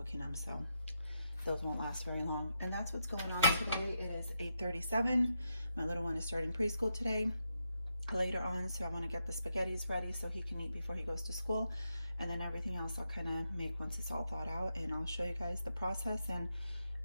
them, so those won't last very long. And that's what's going on today. It is 8:37. My little one is starting preschool today later on, so I want to get the spaghettis ready so he can eat before he goes to school, and then everything else I'll kind of make once it's all thawed out, and I'll show you guys the process. And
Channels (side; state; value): both; inverted; correlation -0.83